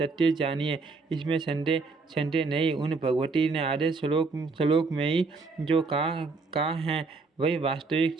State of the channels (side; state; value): left; quieter; 4.1 dB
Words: जानिए, इसमें संदेह नहीं। उन भगवती ने आधे श्लोक में ही जो कहा है वही वास्तविक